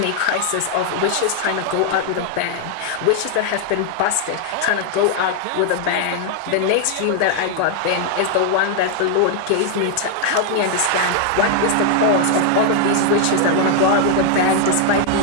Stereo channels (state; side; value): different; both; correlation 0.00